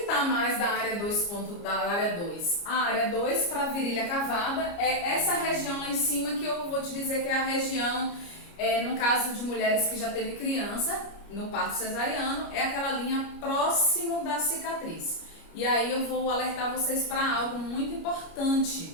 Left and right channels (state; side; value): late; right; 29 ms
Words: está mais da área 2? Da área 2? A área 2 para virilha cavada é essa região lá em cima, que eu vou te dizer que é a região, no caso de mulheres que já teve criança, no parto cesariano, é aquela linha próximo da cicatriz. E aí eu vou alertar vocês para algo muito